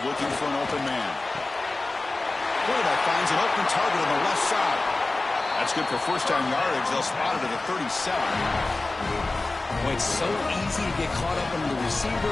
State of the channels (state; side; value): quieter; right; 3.2 dB